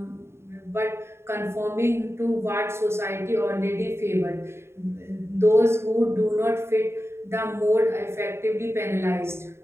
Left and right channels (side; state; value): left; late; 0.12 ms